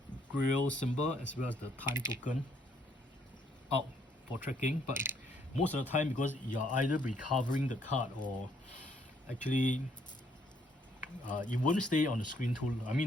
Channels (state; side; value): normal; both; correlation 0.69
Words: grail symbol as well as the time token out for tracking, but most of the time, because you're either recovering the card or actually you won't stay on the screen too,